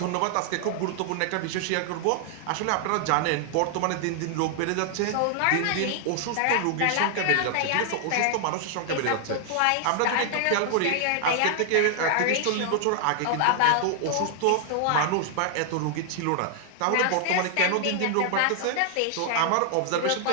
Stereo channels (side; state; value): both; different; correlation 0.00